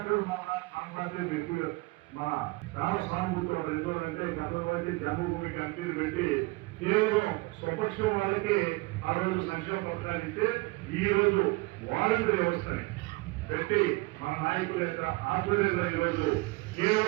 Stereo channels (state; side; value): quieter; left; 24.1 dB